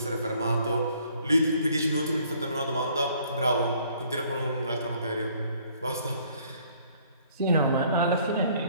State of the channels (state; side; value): inverted; both; correlation -0.61